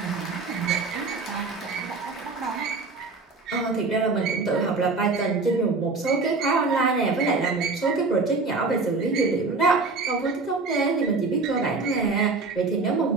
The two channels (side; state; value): left; quieter; 3.9 dB